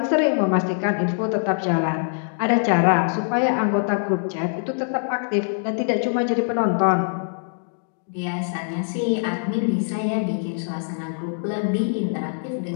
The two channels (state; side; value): silent; right; digital silence